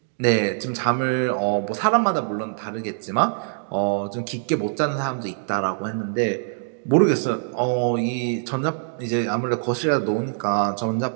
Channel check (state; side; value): silent; left; digital silence